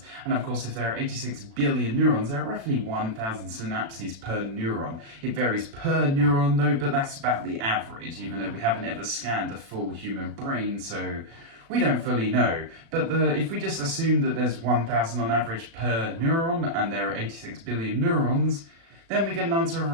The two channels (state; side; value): late; left; 36 ms